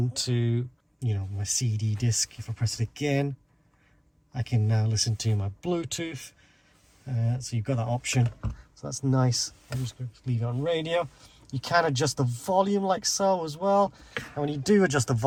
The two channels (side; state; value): both; identical; correlation 1.00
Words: to, you know, my CD disc. If I press it again, I can now listen to my Bluetooth. So you've got that option, so that's nice. I'm just going to leave it on radio. You can adjust the volume like so as well, and when you do adjust the